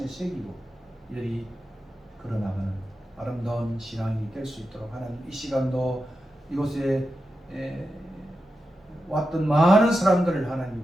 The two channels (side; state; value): both; normal; correlation 0.90